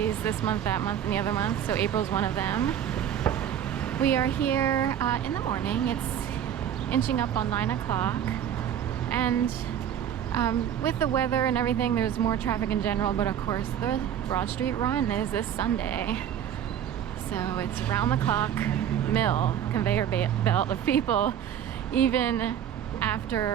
this month, that month, and the other month, so April's one of them. We are here in the morning. It's inching up on 9 o'clock, and with the weather and everything, there's more traffic in general, but of course the Broad Street Run is this Sunday. So it's round the clock mill, conveyor belt of people, even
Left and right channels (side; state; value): left; quieter; 9.7 dB